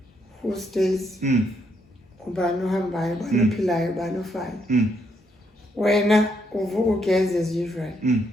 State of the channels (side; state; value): both; normal; correlation 0.76